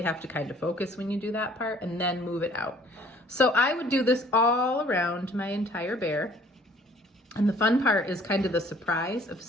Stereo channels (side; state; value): both; normal; correlation 0.56